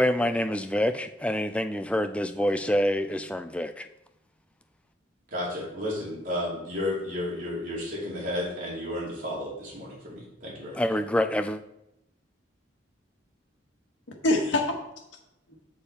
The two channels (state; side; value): normal; both; correlation 0.67